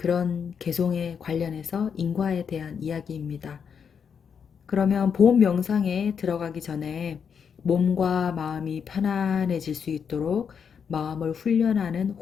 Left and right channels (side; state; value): right; quieter; 6.9 dB